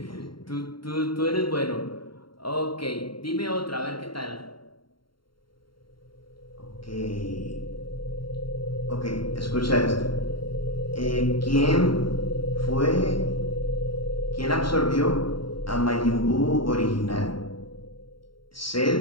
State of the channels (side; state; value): right; late; 0.73 ms